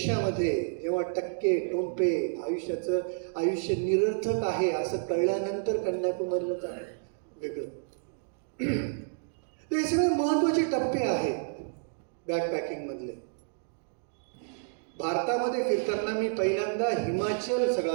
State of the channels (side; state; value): left; silent; digital silence